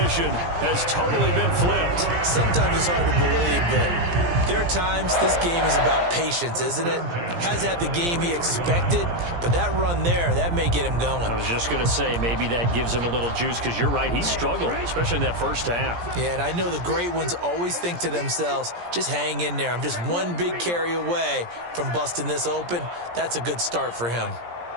has totally been flipped. Sometimes it's hard to believe, but there are times this game is about patience, isn't it? Hasn't had the game he expected, but that run there, that may get him going. I was just going to say, maybe that gives him a little juice, because you're right, he struggled, especially in that first half. Yeah, and I know the great ones always think to themselves, just hang in there. I'm just one big carry away from busting this open. That's a good start for him.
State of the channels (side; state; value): left; late; 17 ms